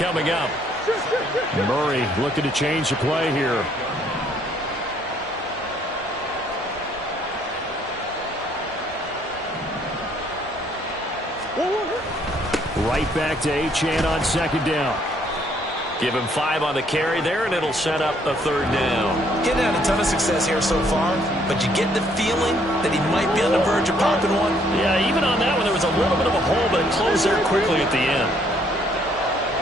up. Murray looking to change the play here. Right back to Achane on 2nd down. Give him 5 on the carry there, and it'll set up a 3rd down. Getting had a ton of success here so far, but you get the feeling that he might be on the verge of popping one. Yeah, even on that one, there was a little bit of a hole, but it closed there quickly at the end.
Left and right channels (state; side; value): normal; both; correlation 0.66